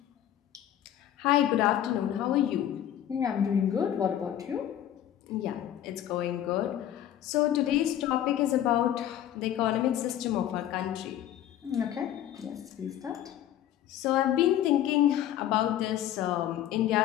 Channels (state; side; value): quieter; right; 11.4 dB